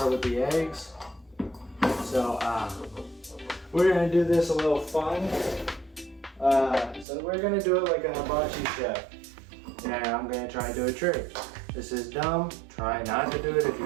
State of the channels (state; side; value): drops out; left; at 7.1 s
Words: with the eggs. So we're gonna do this a little fun. So we're gonna do it like a hibachi chef. And I'm gonna try to do a trick. This is dumb. Try not to do it if you